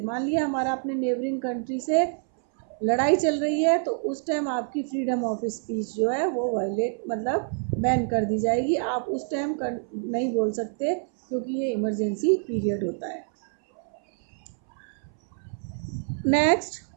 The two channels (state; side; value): silent; left; 61 dB below the other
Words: मान लिया हमारा अपने नेबरिंग कंट्री से लड़ाई चल रही है, तो उस टाइम आपकी फ्रीडम ऑफ स्पीच जो है वो वायलेट मतलब बैन कर दी जाएगी। आप उस टाइम नहीं बोल सकते क्योंकि ये इमरजेंसी पीरियड होता है। Next,